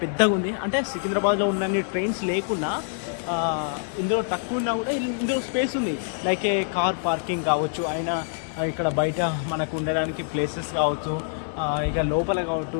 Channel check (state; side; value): silent; right; digital silence